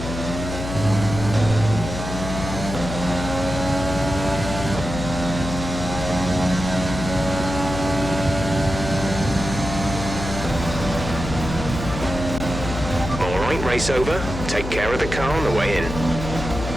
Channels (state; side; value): noise; left; hum, 6 dB below the sound